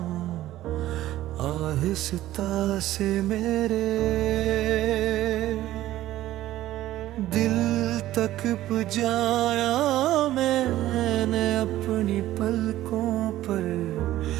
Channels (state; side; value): quieter; left; 14.7 dB